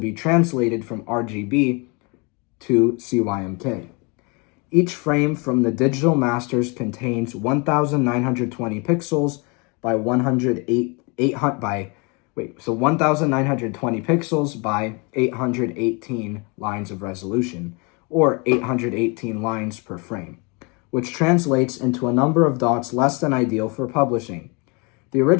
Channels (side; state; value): right; quieter; 30.8 dB